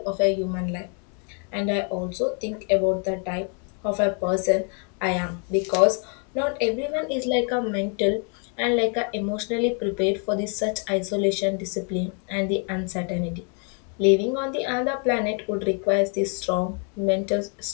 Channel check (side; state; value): right; quieter; 39.9 dB